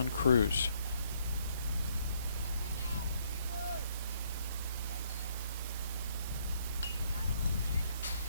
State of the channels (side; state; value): both; inverted; correlation -0.69